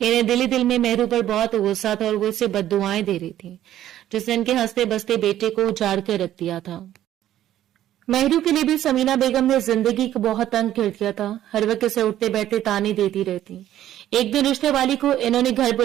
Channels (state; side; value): quieter; left; 12.4 dB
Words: دل ہی دل میں مہرو پر بہت غصہ تھا اور وہ اسے بد دعائیں دے رہی تھی جس نے ان کے ہنستے بستے بیٹے کو اجاڑ کر رکھ دیا تھا۔ مہرو کے لیے بھی سمینہ بیگم نے زندگی کو بہت تنگ کر دیا تھا، ہر وقت اسے اٹھتے بیٹھتے تانے دیتی رہتی۔ ایک دن رشتے والی کو انہوں نے گھر